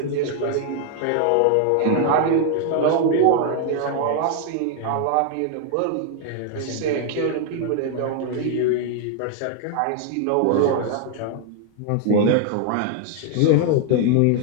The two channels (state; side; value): different; both; correlation 0.00